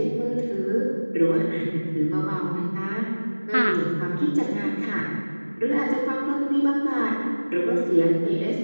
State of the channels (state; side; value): inverted; both; correlation -1.00